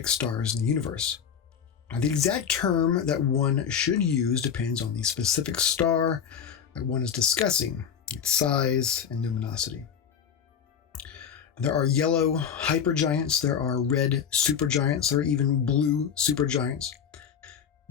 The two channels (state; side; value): quieter; right; 7.7 dB